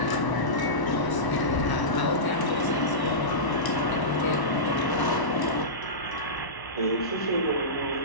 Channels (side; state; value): right; late; 1.0 ms